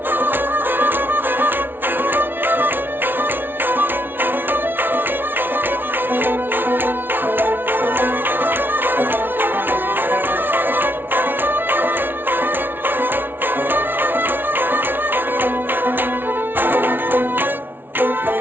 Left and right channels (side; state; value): left; late; 0.10 ms